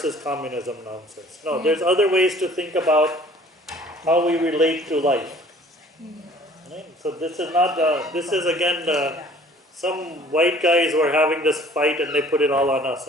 communism nonsense. No, there's other ways to think about how we relate to life. Right? So this is not, this is again, some white guys were having this fight and they put it all on us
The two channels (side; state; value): both; normal; correlation 0.52